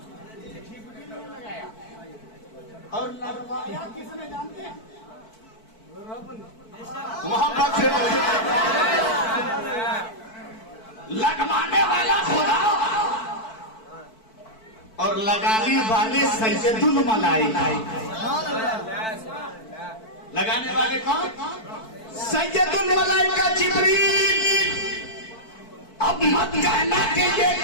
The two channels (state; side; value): late; right; 4.5 ms